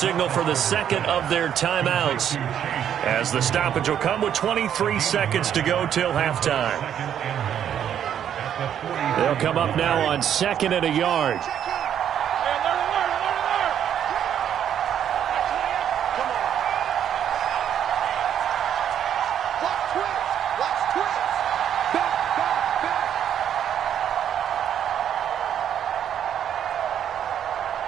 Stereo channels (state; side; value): quieter; left; 9.5 dB